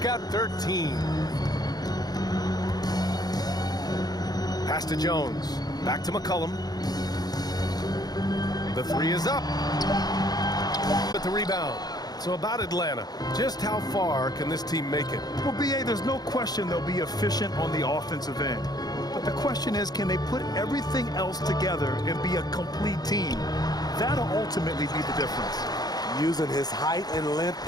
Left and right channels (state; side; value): late; right; 0.19 ms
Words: 13. Pass to Jones. Back to McCollum. The 3 is up. With the rebound. So about Atlanta, just how far can this team make it? Well, B.A., there's no question they'll be efficient on the offensive end. But the question is, can they put everything else together and be a complete team? That'll ultimately be the difference. Using his height and length